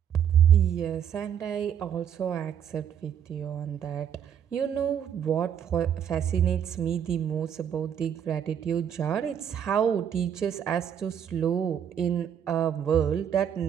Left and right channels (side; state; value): left; quieter; 8.8 dB